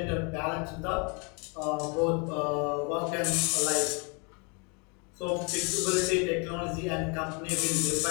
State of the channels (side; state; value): right; quieter; 33.6 dB